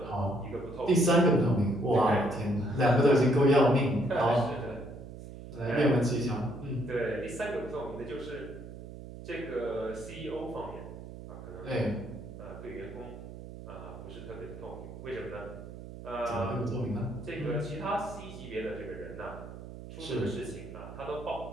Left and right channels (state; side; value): noise; right; hum, 13 dB below the sound